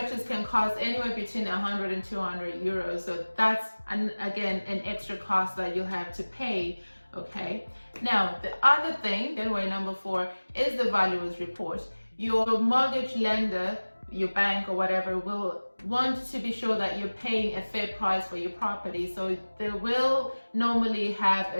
can cost anywhere between 100 and 200 euros. So that's, again, an extra cost that you have to pay. Okay. Now, the other thing, anyway, number 4, is the valuer's report. Your mortgage lender, your bank or whatever, will want to be sure that you're paying a fair price for your property. So they will normally have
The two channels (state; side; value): inverted; both; correlation -1.00